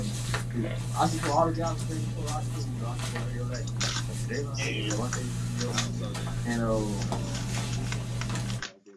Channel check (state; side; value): identical; both; correlation 1.00